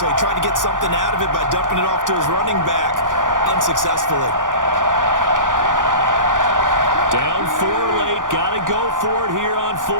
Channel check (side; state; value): left; late; 0.88 ms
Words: he tried to get something out of it by dumping it off to his running back unsuccessfully. Down 4 late. Got to go for it here on